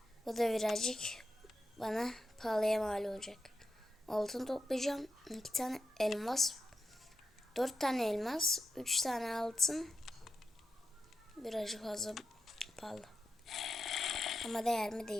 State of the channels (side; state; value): both; normal; correlation 0.88